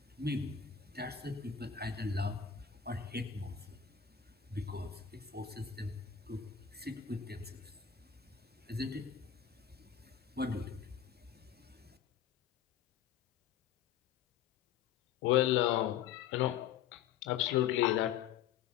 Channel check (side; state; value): right; quieter; 8.7 dB